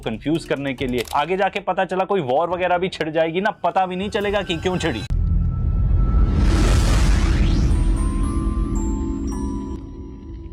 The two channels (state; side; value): identical; both; correlation 1.00